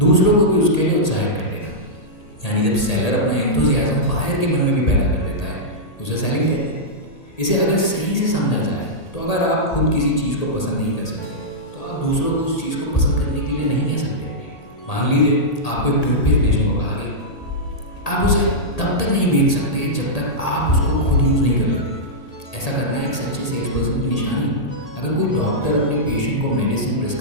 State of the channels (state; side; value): late; right; 1.8 ms